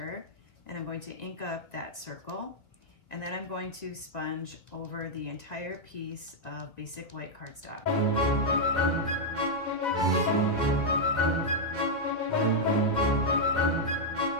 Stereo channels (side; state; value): right; late; 2.2 ms